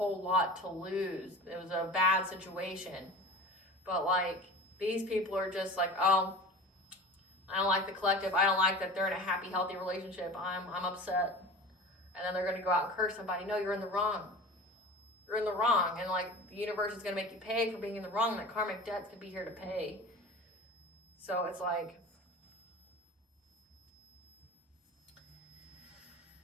lot to lose. It was a bad situation. But like, these people are just like, oh, I don't like the collective. I don't like that they're in a happy, healthy relationship. I'm upset. And then they're going to go out and curse somebody. No, you're in the wrong. You're in the wrong. And like, the universe is going to make you pay for being in the wrong. That karmic debt's going to be here to pay. So it's like,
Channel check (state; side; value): normal; both; correlation 0.36